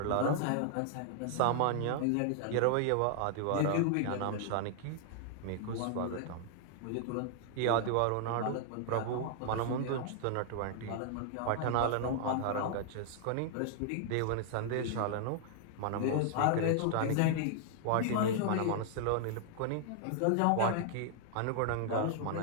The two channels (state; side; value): different; both; correlation 0.00